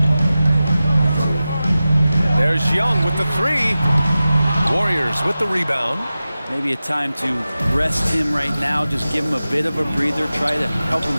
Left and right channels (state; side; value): inverted; both; correlation -0.95